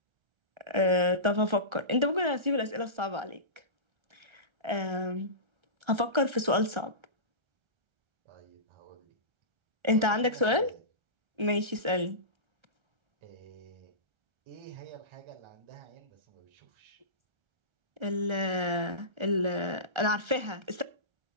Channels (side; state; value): left; late; 1.3 ms